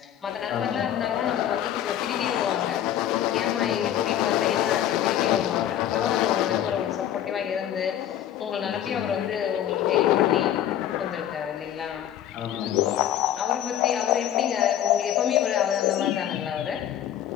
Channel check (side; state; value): right; quieter; 11.1 dB